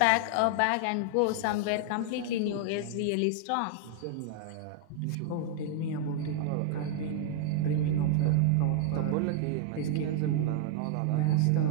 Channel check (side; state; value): both; different; correlation 0.00